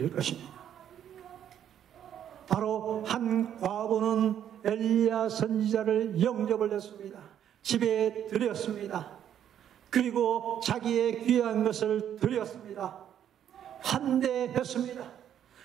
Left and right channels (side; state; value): left; quieter; 9.9 dB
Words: 것입니다. 바로 한 과부는 엘리야 선지자를 영접을 했습니다. 집에 들였습니다. 그리고 자기의 귀한 것을 드렸습니다. 환대했습니다.